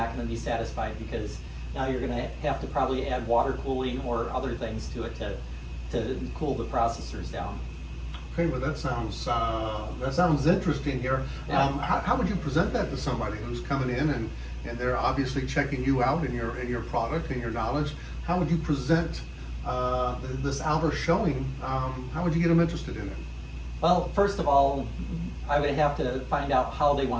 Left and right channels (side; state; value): both; identical; correlation 1.00